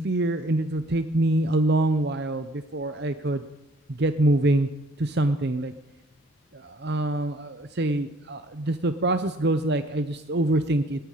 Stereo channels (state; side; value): normal; both; correlation 0.58